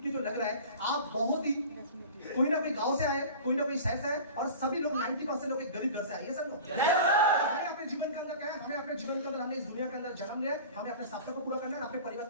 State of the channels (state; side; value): inverted; both; correlation -0.38